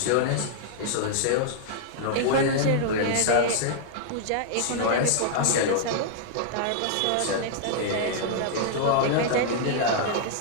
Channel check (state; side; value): different; both; correlation -0.01